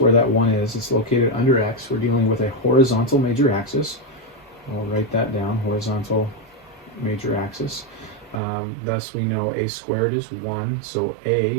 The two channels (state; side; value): drops out; left; at 8.4 s